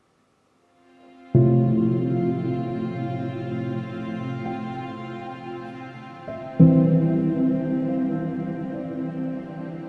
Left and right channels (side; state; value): both; identical; correlation 1.00